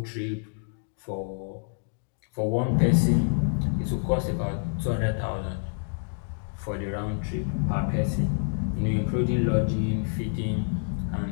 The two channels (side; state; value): right; silent; digital silence